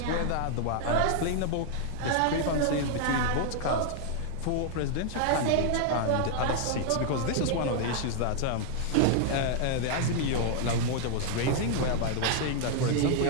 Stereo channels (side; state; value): both; different; correlation 0.00